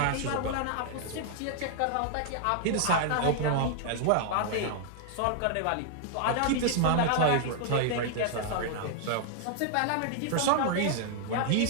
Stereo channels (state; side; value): different; both; correlation 0.00